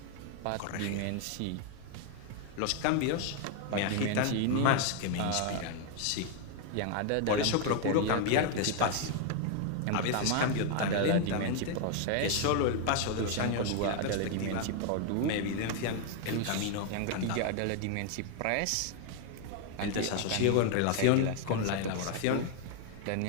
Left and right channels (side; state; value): both; different; correlation 0.00